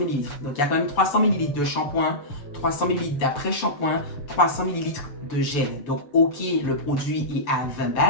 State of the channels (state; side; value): late; right; 6.9 ms